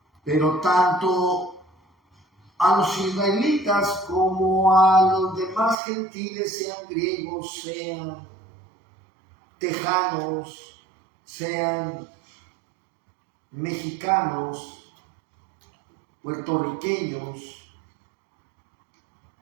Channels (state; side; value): drops out; left; at 5.8 s